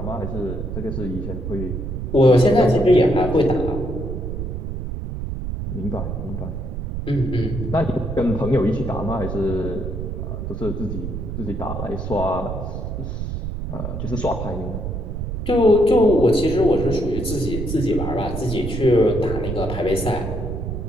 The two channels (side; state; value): right; noise; rumble, 5 dB below the sound